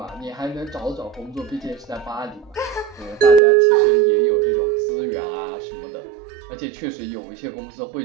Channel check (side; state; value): left; drops out; at 3.4 s